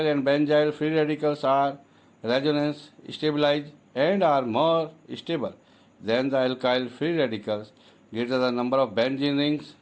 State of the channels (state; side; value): identical; both; correlation 1.00